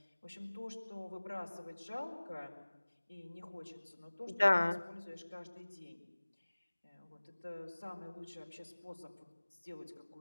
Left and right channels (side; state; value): both; inverted; correlation -1.00